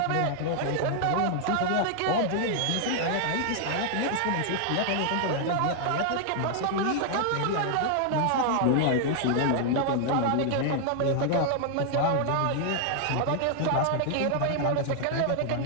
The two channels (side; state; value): both; different; correlation 0.00